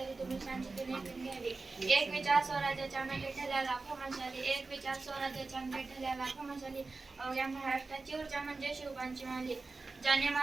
तुम्ही शांततेने ऐकून घ्यावे. एक विचार स्वराज्याच्या मेटे ठरल्या लाखो मशाली, एक विचार स्वराज्याच्या मेटे ठरल्या लाखो मशाली, अवघ्या महाराष्ट्राची ऊर्जा म्हणजे शिवबांची माली. ज्याने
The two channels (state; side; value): quieter; left; 3.8 dB